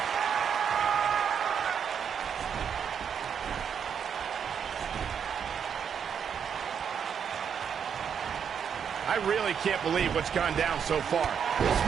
I really can't believe what's gone down so far. This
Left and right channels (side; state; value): left; quieter; 7.5 dB